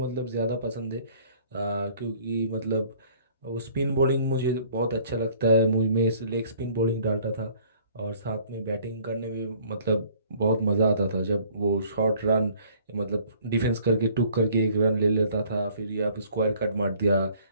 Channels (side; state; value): both; inverted; correlation -0.56